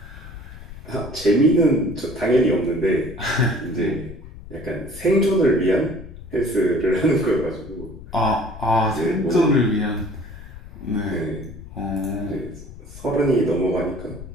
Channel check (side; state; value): left; noise; rumble, 15 dB below the sound